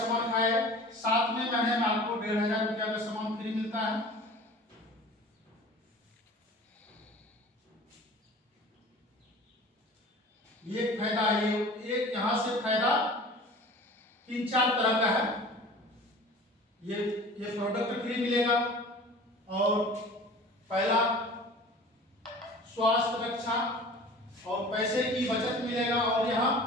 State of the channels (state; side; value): normal; both; correlation 0.42